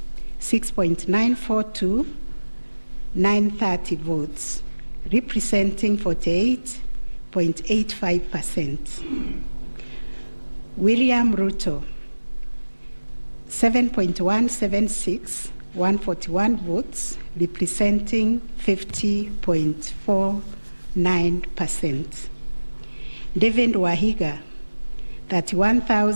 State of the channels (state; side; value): inverted; both; correlation -1.00